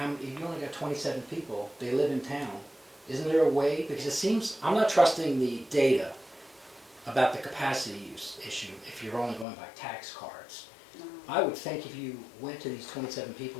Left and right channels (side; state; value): right; drops out; at 9.5 s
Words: if you only got 27 people, they live in town, isn't there a way, because it seems, I'm not trusting the data about the capacity use issue if you're only going by tax cards. I would think if you went to these 27